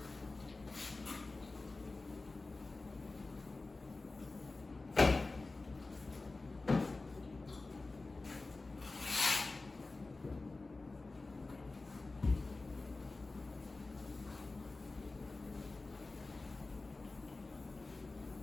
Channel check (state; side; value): quieter; right; 3.4 dB